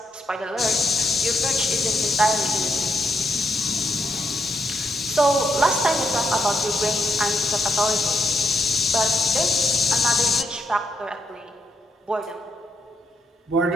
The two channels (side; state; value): both; normal; correlation 0.78